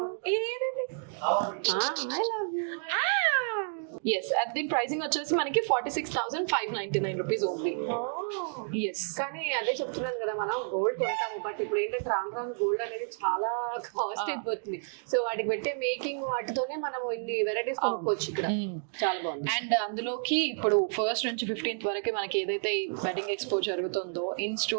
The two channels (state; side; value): silent; left; digital silence